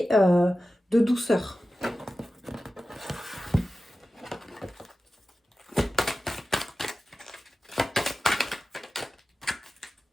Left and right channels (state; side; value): normal; both; correlation 0.95